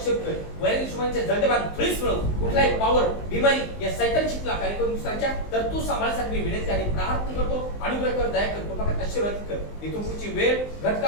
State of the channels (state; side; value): late; right; 19 ms